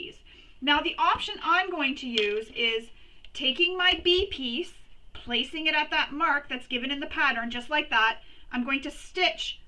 Now the option I'm going to use is taking my B piece, placing it at that mark that's given in the pattern, just like that. I'm going to stitch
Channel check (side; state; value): both; identical; correlation 1.00